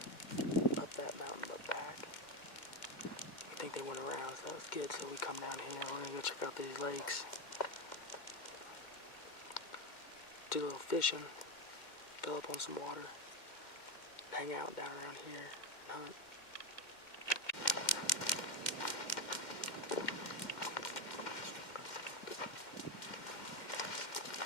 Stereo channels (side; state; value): right; late; 2.1 ms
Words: up that mountain but back. I think they went around, so that was good. So we come down here, we're gonna go check out these lakes. Do a little fishing, fill up on some water, hang out down around here and hunt.